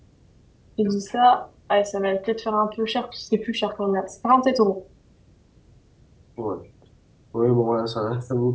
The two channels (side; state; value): both; identical; correlation 1.00